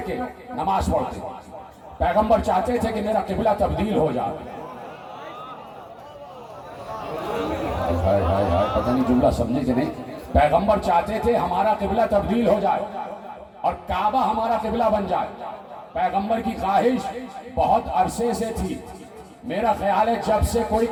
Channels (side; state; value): both; identical; correlation 1.00